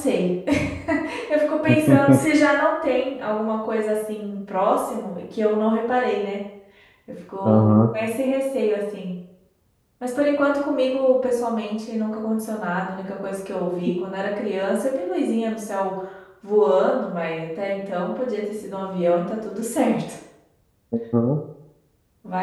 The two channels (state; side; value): identical; both; correlation 1.00